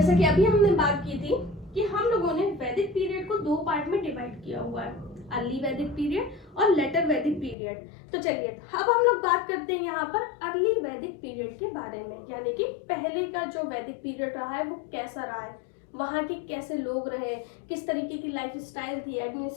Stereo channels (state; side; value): drops out; right; at 7.6 s